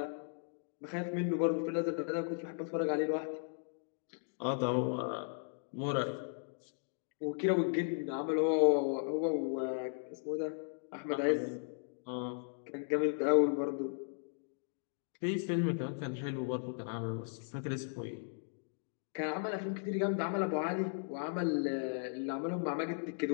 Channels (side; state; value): right; silent; digital silence